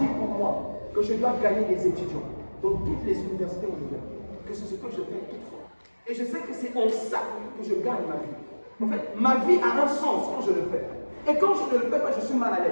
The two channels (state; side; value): inverted; both; correlation -1.00